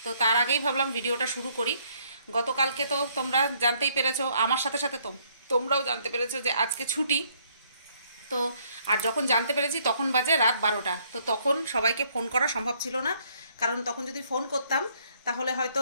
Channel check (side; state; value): both; inverted; correlation -0.67